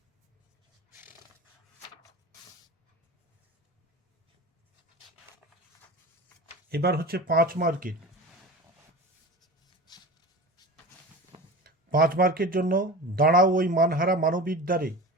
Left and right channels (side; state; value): both; normal; correlation 0.33